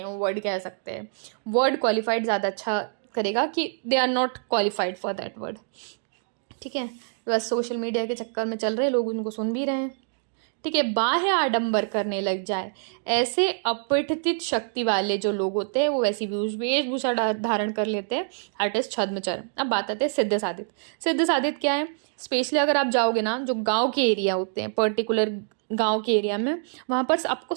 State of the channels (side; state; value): left; silent; digital silence